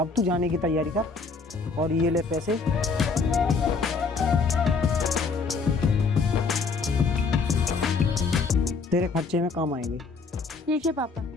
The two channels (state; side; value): quieter; right; 4.5 dB